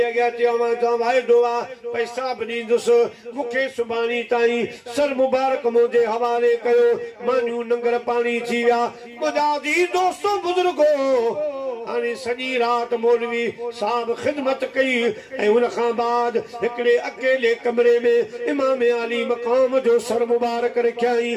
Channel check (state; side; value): identical; both; correlation 1.00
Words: अॻियां चयो मां तव्हां वाइदो आहे पैसा बि ॾींदुसि मूंखे सुभाणे ताईं सर मुबारक मुंहिंजे हवाले कयो मानियूं नंगर पाणी थी विया मुंहिंजा अज़ीज़ दोस्तो बुज़ुर्गो हाणे सॼी राति मौलवी साहब ख़िदमत कई ऐं हुन खां बाद हिकिड़े अकेले कमरे में इमाम आली मक़ाम जो सर मुबारक रखियाई